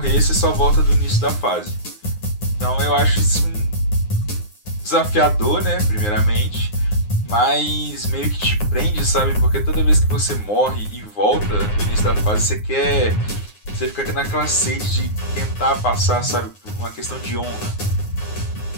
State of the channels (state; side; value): late; right; 9.6 ms